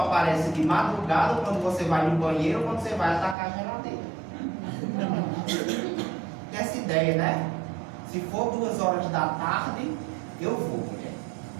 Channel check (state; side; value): drops out; left; at 3.4 s